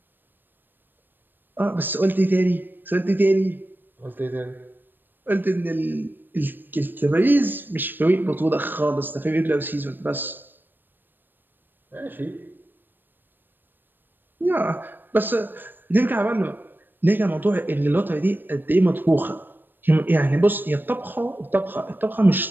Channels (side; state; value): left; late; 0.093 ms